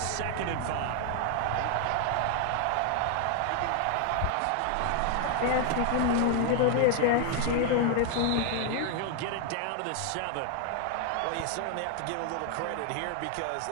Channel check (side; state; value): both; different; correlation 0.00